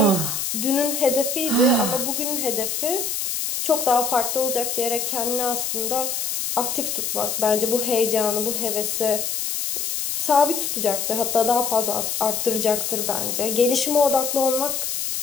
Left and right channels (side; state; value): left; noise; hiss, 2 dB below the sound